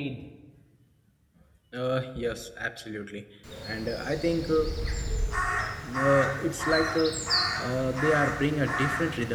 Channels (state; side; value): identical; both; correlation 1.00